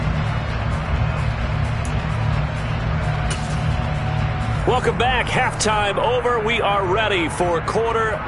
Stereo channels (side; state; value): both; identical; correlation 1.00